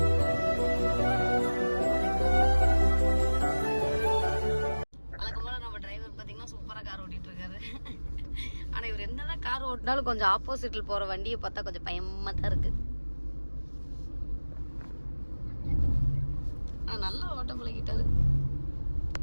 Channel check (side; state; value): both; inverted; correlation -1.00